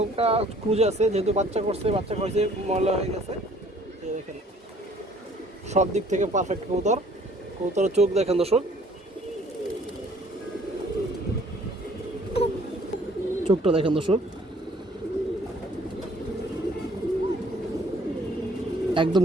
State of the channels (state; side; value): normal; both; correlation 0.57